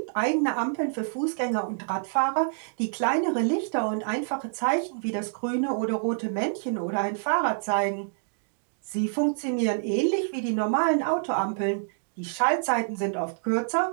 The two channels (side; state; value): left; silent; digital silence